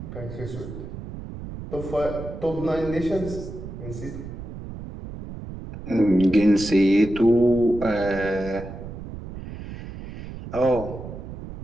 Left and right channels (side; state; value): right; noise; rumble, 10 dB below the sound